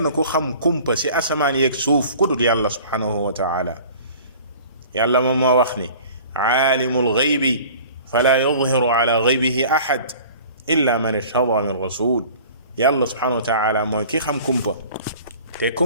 ku xam kumpa ci asamaan yeeg suuf ku dul yàlla subhanahu wa taala. yàlla moom moo wax ni aalimul ghaybi fala yudhiru ala ghaybihi ahad illa man irtada min rasul. yàlla subhanahu wa taala mooy ki xam kumpa, te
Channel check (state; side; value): inverted; both; correlation -0.45